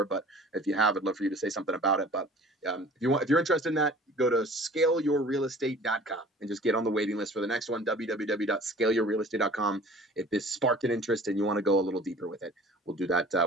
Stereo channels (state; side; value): normal; both; correlation 0.47